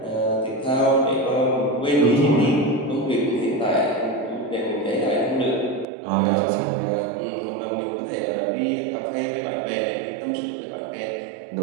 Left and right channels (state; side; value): drops out; left; at 5.9 s